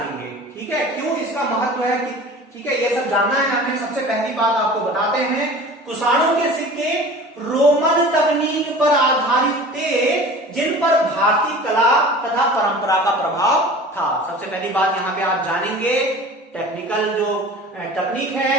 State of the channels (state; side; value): normal; both; correlation 0.40